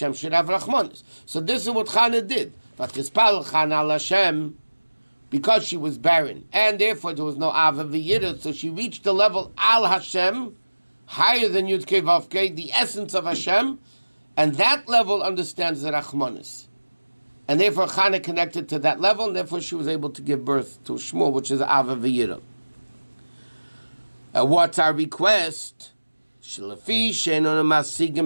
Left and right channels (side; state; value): both; inverted; correlation -1.00